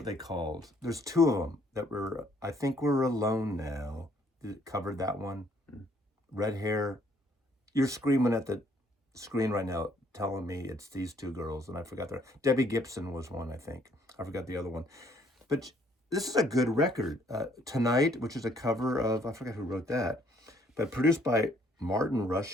they called? There's two of them that were, I think We're Alone Now. Covered that one. Red hair. You're screaming at the screen right now, telling me it's these two girls, and I forgot their. Debbie Gibson was one, I think. I forgot the other one. But this is a good record. Tonight, which is a cover of, I forgot who wrote that, but produced by Martin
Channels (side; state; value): both; normal; correlation 0.65